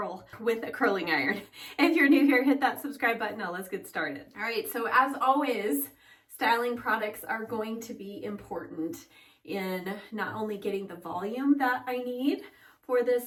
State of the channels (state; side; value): identical; both; correlation 1.00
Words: with a curling iron. If you're new here, hit that subscribe button. Now let's get started. All right, so as always, styling products are going to be important in not only getting the volume that I need for